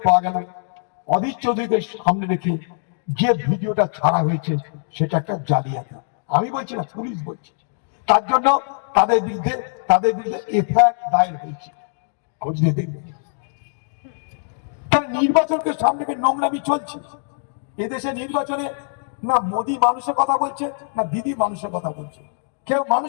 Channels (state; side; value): silent; right; digital silence